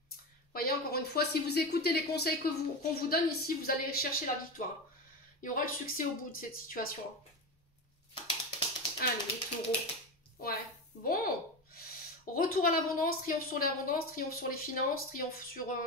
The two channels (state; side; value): normal; both; correlation 0.20